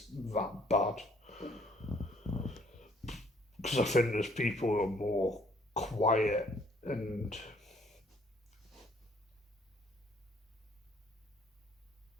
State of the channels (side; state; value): both; normal; correlation 0.62